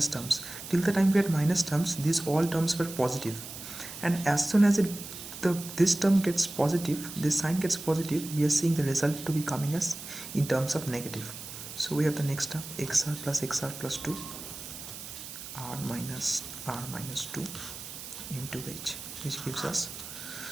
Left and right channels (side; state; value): right; noise; hiss, 11 dB below the sound